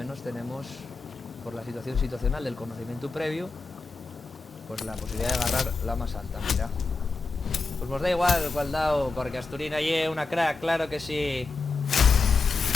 tenemos, por la situación situacional del conocimiento previo, pues la posibilidad de agarrar la más alta. Mira, pues nos da igual cuál dado, porque Asturina es una crack, claro que sí.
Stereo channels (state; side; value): quieter; right; 4.0 dB